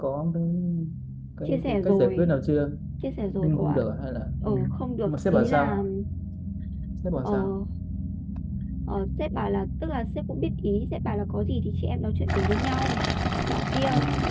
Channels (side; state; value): both; identical; correlation 1.00